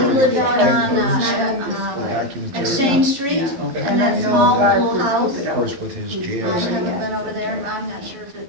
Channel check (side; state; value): left; late; 12 ms